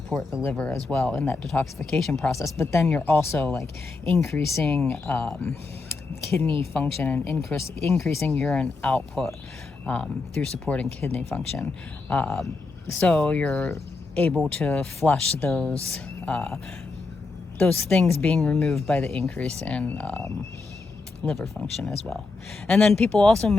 the liver as well in that detoxification process. But then you're also like increasing kidney function and increasing urine output through supporting kidney function. So you're able to flush those things being removed by the increase in liver function as well. And then people also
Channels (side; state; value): right; quieter; 3.8 dB